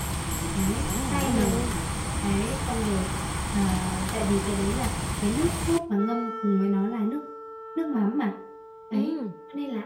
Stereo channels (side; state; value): both; identical; correlation 1.00